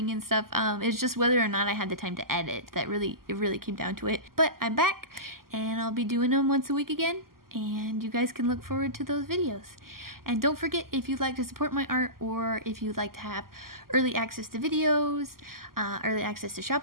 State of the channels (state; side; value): late; left; 0.92 ms